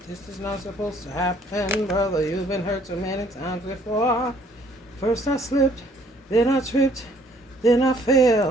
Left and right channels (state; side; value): normal; both; correlation 0.61